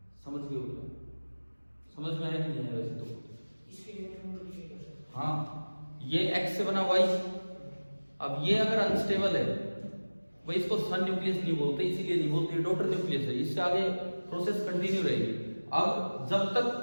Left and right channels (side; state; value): both; inverted; correlation -1.00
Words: समझ गए हो क्या, समझ में आया कि नहीं है वैसे तो, हाँ ये एक्स से बना वाई। अब ये अगर अनस्टेबल है, वही इसको सन न्यूक्लियस नहीं बोलते, इसीलिए नहीं बोलते, डॉटर न्यूक्लियस है, इससे आगे प्रोसेस कंटिन्यू रहेगी। अब जब